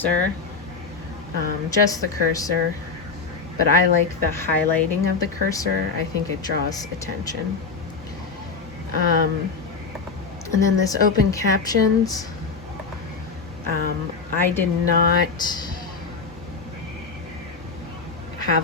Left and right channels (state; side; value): quieter; right; 4.8 dB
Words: just the cursor, but I like the highlighting of the cursor. I think it draws attention. And then this open captions, I did not have